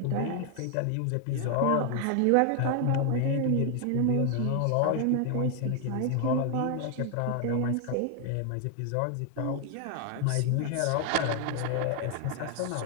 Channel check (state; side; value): different; both; correlation 0.00